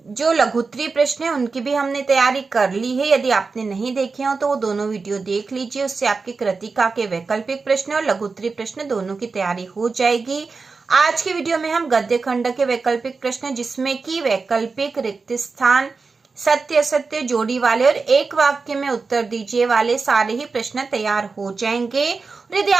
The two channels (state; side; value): quieter; left; 4.4 dB